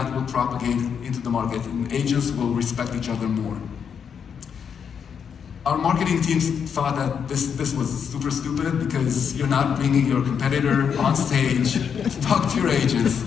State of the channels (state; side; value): quieter; right; 7.2 dB